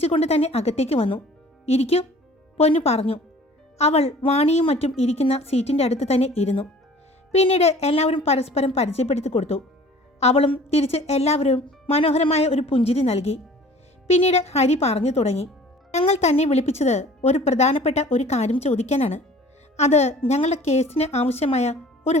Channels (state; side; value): normal; both; correlation 0.48